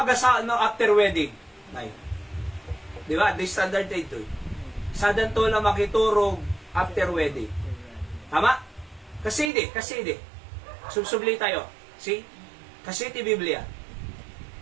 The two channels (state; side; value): drops out; left; at 9.5 s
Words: no after wedding. Nay. Di ba? The standard ito. Sa danto lang makiturog after wedding. Tama? Kasi di. Subsubli tayo. See? Kasi ti Biblia.